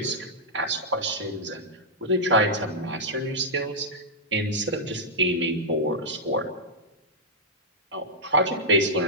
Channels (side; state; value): both; normal; correlation -0.09